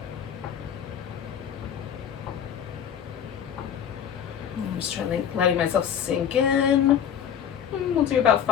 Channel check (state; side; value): quieter; right; 8.8 dB